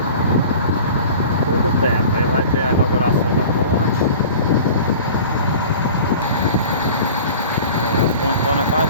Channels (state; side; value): inverted; both; correlation -0.41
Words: Pouco tempo. Aí vai ter a inauguração da ponte. Aí, a pontona